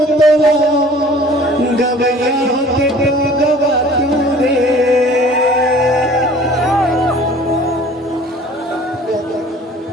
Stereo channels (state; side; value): normal; both; correlation 0.49